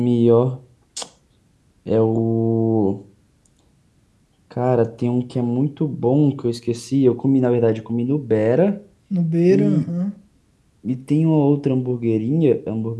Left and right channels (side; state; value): both; identical; correlation 1.00